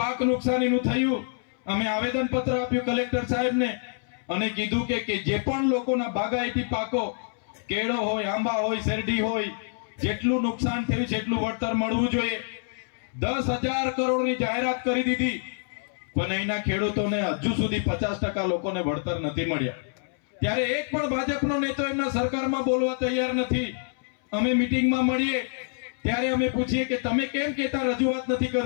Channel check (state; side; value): silent; right; 61 dB below the other